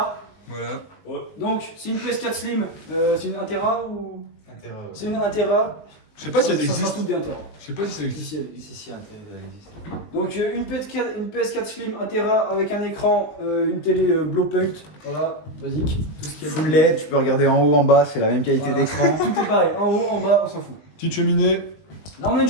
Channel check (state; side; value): late; right; 19 ms